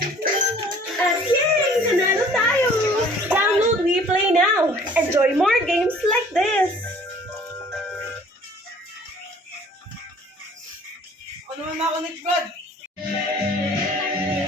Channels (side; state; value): both; normal; correlation 0.53